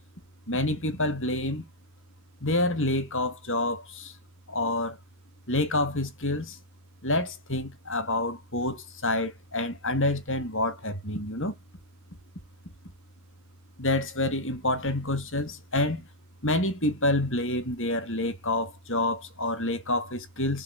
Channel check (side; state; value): both; normal; correlation -0.06